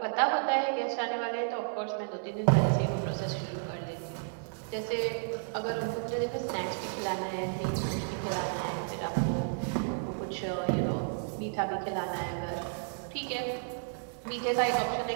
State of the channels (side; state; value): left; silent; digital silence